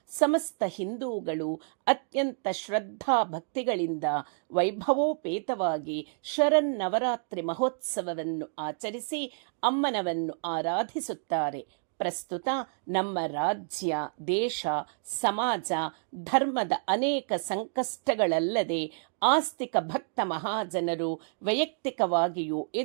ಸಮಸ್ತ ಹಿಂದೂಗಳು ಅತ್ಯಂತ ಶ್ರದ್ಧಾ ಭಕ್ತಿಗಳಿಂದ ವೈಭವೋಪೇತವಾಗಿ ಶರನ್ನವರಾತ್ರಿ ಮಹೋತ್ಸವವನ್ನು ಆಚರಿಸಿ ಅಮ್ಮನವನ್ನು ಆರಾಧಿಸುತ್ತಾರೆ. ಪ್ರಸ್ತುತ ನಮ್ಮ ರಾಜ್ಯ, ದೇಶ, ಸಮಾಜ, ಧರ್ಮದ ಅನೇಕ ಸಂಕಷ್ಟಗಳಲ್ಲದೆ ಆಸ್ತಿಕ ಭಕ್ತ ಮಹಾಜನರು ವೈಯಕ್ತಿಕವಾಗಿಯೂ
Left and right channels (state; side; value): silent; left; digital silence